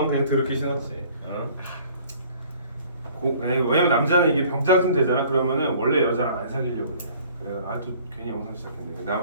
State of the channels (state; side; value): inverted; both; correlation -0.53